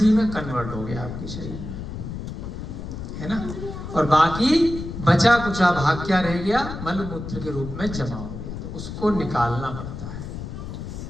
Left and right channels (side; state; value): left; noise; rumble, 8 dB below the sound